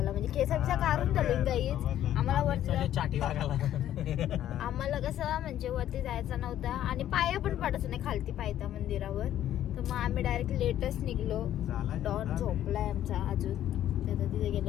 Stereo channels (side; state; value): right; quieter; 11.8 dB